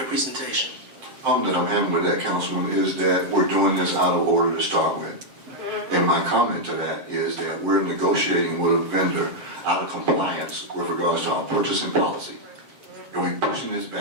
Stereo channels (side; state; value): left; late; 7.6 ms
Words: presentation. The problem that I'm having with that, Councilman, is that we're doing this out of order to start with. And my comment to that is that we're negotiating with a vendor out of compliance with regards to our purchasing policy. And we're pushing this